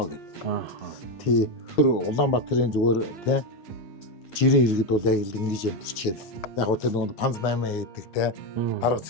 гэд. Тий. Улаанбаатарын зүгээр тий жирийн иргэд бол яг л ингэж амьдчихэд яг гоо тэр нэг панз 8 хийдэг тий дарга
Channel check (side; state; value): right; late; 9.4 ms